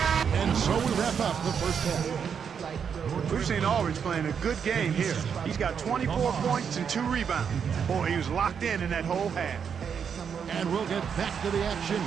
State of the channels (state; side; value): quieter; left; 7.1 dB